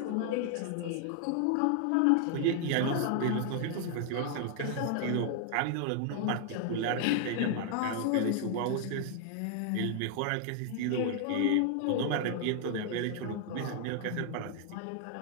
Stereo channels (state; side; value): different; both; correlation 0.00